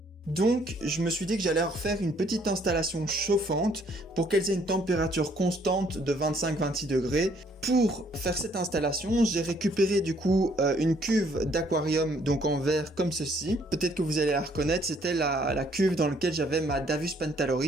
Donc je me suis dit que j'allais refaire une petite installation chauffante pour qu'elles aient une température constante de 25-26 degrés. Pour faire cette installation, j'ai récupéré du coup une cuve d'aquarium, donc en verre comme ceci. Peut-être que vous allez la reconnaître, c'était la cuve dans laquelle j'avais ma Davus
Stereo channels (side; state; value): both; normal; correlation 0.64